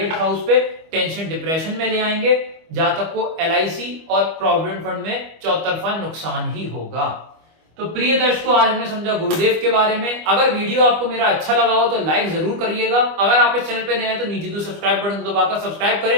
हाउस पे, टेंशन डिप्रेशन में ले आएंगे। जातक को LIC और प्रोविडेंट फंड में चौतरफा नुकसान ही होगा। तो प्रिय दर्शकों आज हमने समझा गुरुदेव के बारे में। अगर वीडियो आपको मेरा अच्छा लगा हो तो लाइक जरूर करिएगा। अगर आप इस चैनल पे नए हैं तो नीचे जो सब्सक्राइब बटन दबाकर सब्सक्राइब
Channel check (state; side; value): late; left; 25 ms